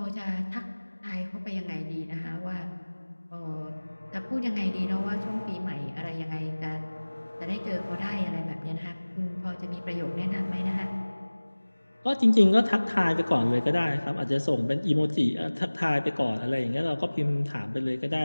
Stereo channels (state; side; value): inverted; both; correlation -1.00